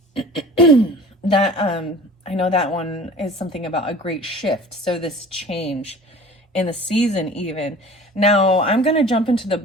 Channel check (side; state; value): both; normal; correlation 0.43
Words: that I know that one is something about a great shift. So this change in the season even. Now I'm going to jump into the